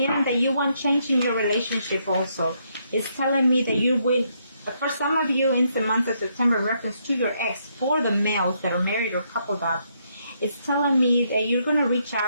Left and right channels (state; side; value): inverted; both; correlation -0.75